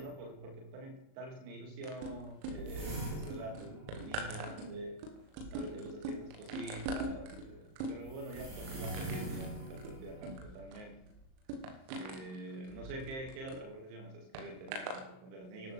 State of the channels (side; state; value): left; late; 38 ms